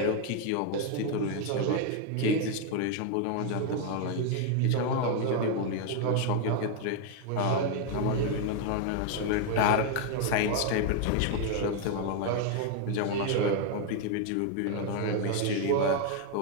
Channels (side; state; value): both; different; correlation 0.01